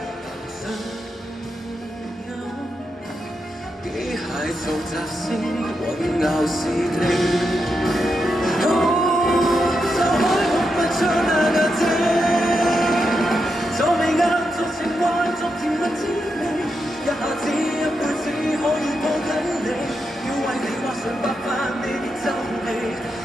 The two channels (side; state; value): both; normal; correlation 0.85